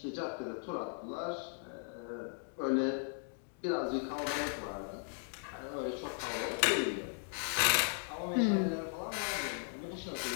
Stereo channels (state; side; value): silent; right; 53 dB below the other